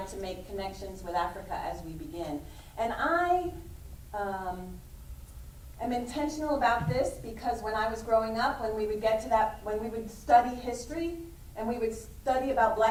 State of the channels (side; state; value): both; identical; correlation 1.00